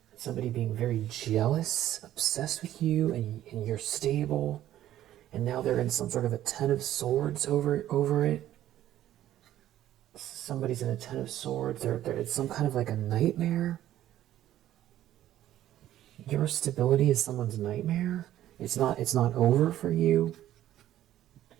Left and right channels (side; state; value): left; quieter; 12.9 dB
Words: somebody being very jealous, obsessed with you, and you're stable, and now they're in some sort of a Ten of Swords over it. Somebody's in a Ten of Swords. It's some kind of like a nightmare. Your stability is someone's nightmare. It's not over for you.